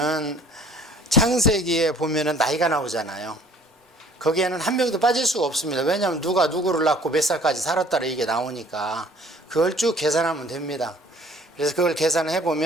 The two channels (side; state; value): both; normal; correlation 0.54